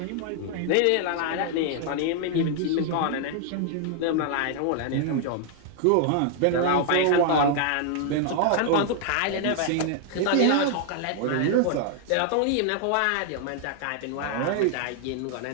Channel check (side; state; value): both; different; correlation 0.00